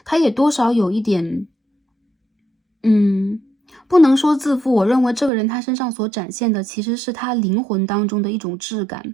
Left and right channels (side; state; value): left; drops out; at 5.3 s